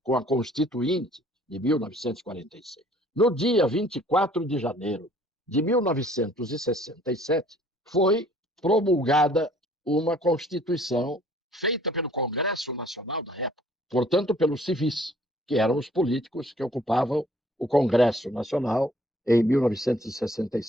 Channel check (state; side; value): normal; both; correlation 0.58